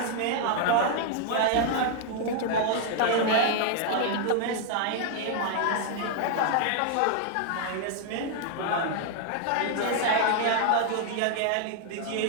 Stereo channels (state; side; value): different; both; correlation 0.00